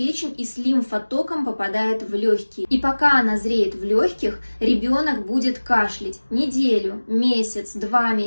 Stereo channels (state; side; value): inverted; both; correlation -1.00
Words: и с лимфотоком попадает в легкие. И пока она зреет в легких, ребенок будет кашлять неделю, месяц, 2